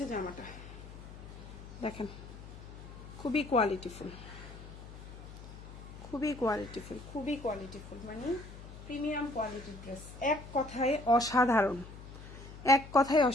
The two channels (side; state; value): left; noise; hum, 14 dB below the sound